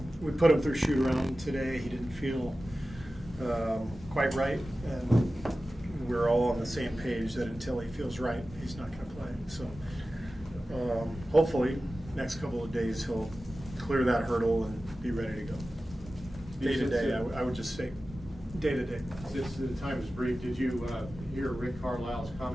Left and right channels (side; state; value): both; normal; correlation 0.95